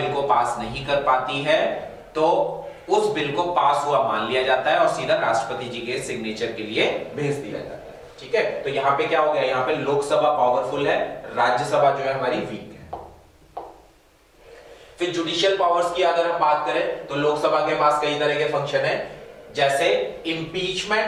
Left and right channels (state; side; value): identical; both; correlation 1.00